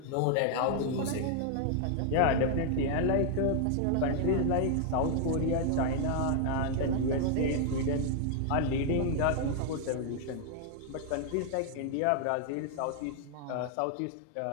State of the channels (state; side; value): different; both; correlation 0.00